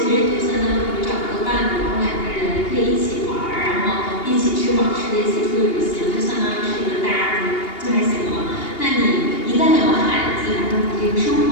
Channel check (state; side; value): late; right; 2.8 ms